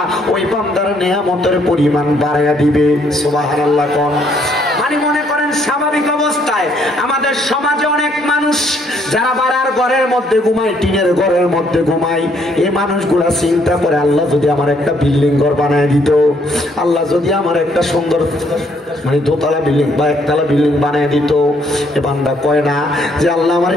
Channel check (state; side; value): normal; both; correlation 0.68